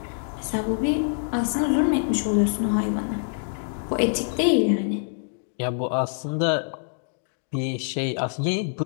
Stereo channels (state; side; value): silent; right; digital silence